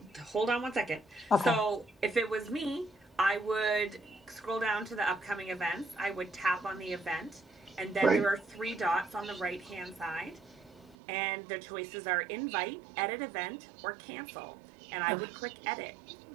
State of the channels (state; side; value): drops out; left; at 11.0 s